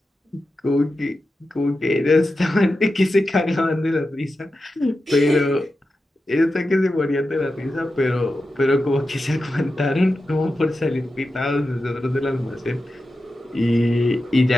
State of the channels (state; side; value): normal; both; correlation 0.91